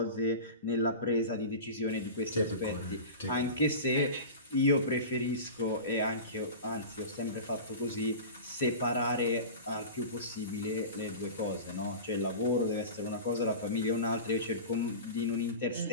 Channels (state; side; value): inverted; both; correlation -0.32